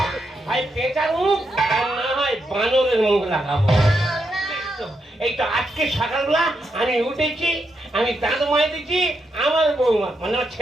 ভাই পেঁচার মুখ আর না হয় বানরের মুখ লাগাবো। এই তো আজকে সকালবেলা আমি উঠেছি, আমি দাঁত মাইতেছি, আমার বৌমা মানে আমার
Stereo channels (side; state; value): both; normal; correlation 0.82